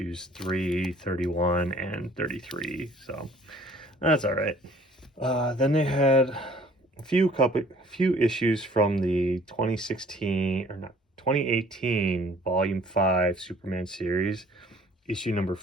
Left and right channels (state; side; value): normal; both; correlation 0.55